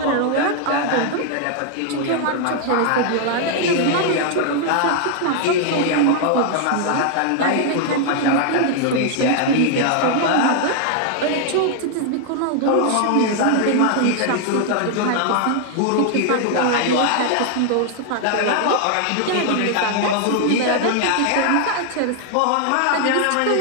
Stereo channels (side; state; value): both; different; correlation 0.00